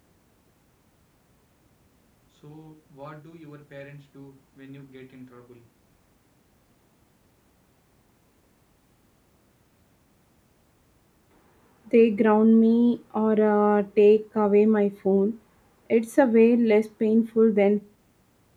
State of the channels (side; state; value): both; identical; correlation 1.00